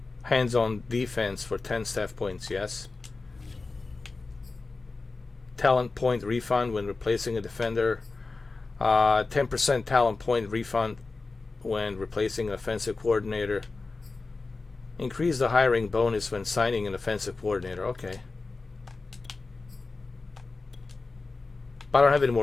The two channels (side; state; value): right; quieter; 3.8 dB